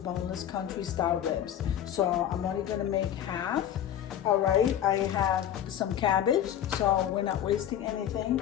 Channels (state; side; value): quieter; right; 10.5 dB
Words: boneless country style ribs. So I'm only going to make half. All right, I have some cabbage, so we're not wasting anything.